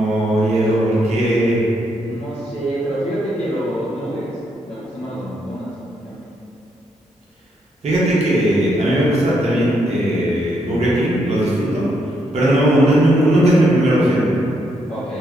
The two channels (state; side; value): normal; both; correlation 0.76